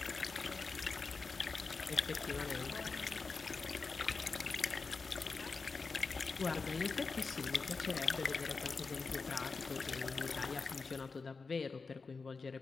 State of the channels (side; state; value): right; quieter; 4.5 dB